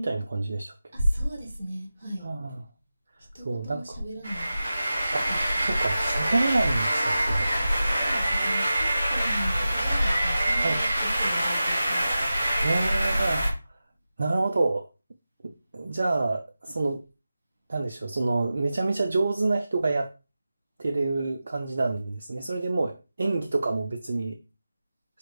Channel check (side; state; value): both; inverted; correlation -0.94